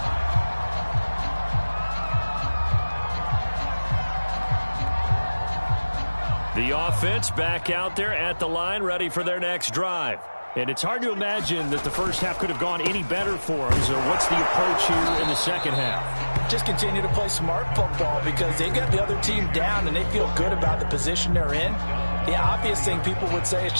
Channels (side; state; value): both; inverted; correlation -1.00